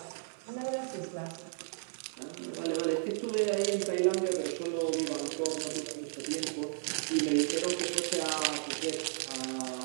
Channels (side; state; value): left; silent; 55 dB below the other